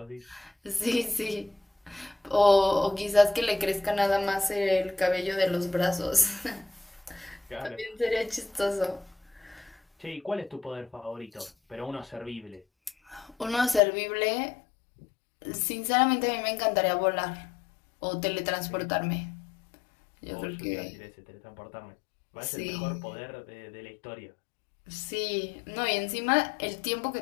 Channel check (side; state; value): right; drops out; at 13.8 s